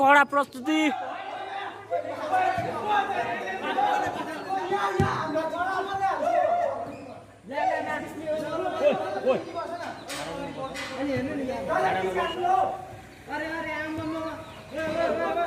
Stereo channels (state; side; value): identical; both; correlation 1.00